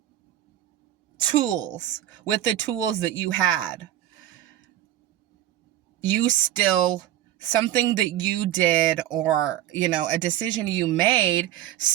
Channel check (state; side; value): quieter; left; 12.8 dB